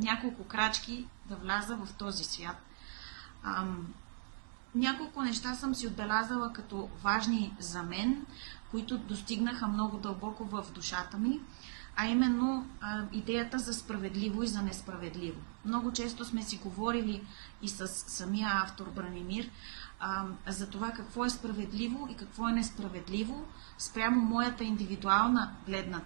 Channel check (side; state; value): left; silent; digital silence